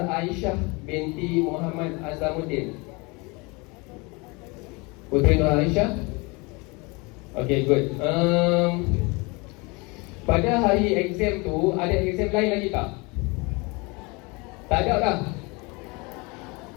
binti Muhammad Azamuddin. Putri Nur Aisyah. Okay, good. Pada hari exam tu ada exam lain lagi tak? Tak ada lah.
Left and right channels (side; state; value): right; quieter; 27.4 dB